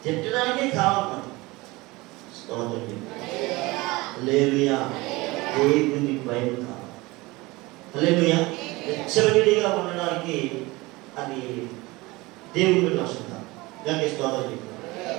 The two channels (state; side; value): quieter; left; 22.0 dB